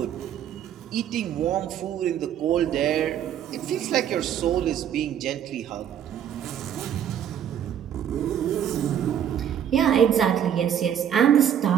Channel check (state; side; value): quieter; left; 9.5 dB